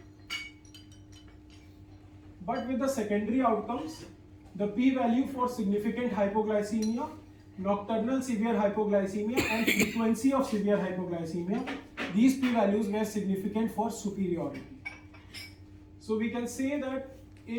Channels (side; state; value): both; identical; correlation 1.00